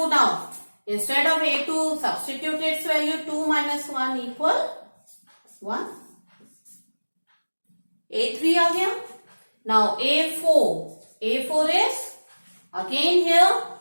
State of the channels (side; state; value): both; inverted; correlation -1.00